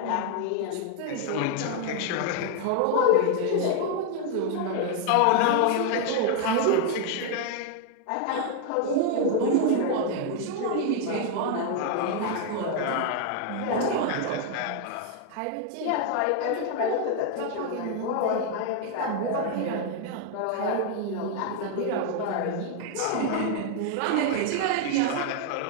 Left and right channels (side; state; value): both; different; correlation 0.00